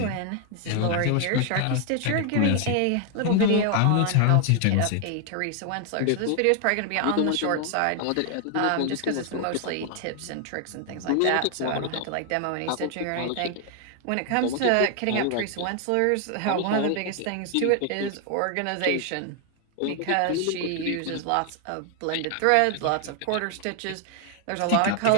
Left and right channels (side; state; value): both; different; correlation 0.00